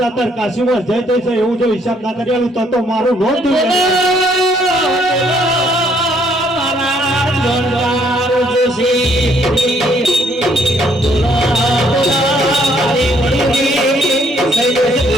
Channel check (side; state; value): both; normal; correlation 0.67